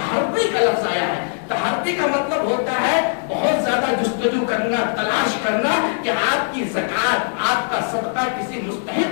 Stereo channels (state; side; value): silent; right; 65 dB below the other